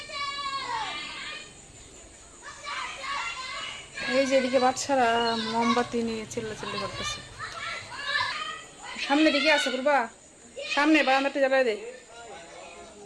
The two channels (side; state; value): both; identical; correlation 1.00